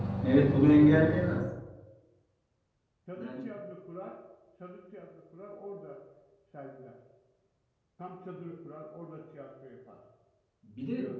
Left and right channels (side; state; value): both; identical; correlation 1.00